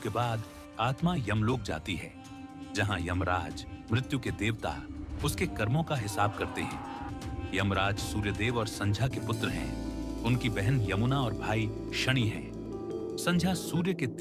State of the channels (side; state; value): both; identical; correlation 1.00